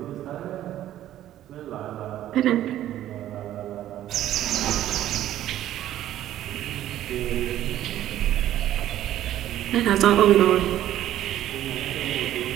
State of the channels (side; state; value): left; quieter; 12.6 dB